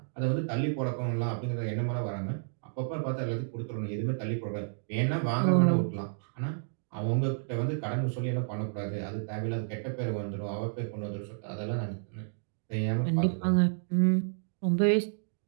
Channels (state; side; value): silent; left; digital silence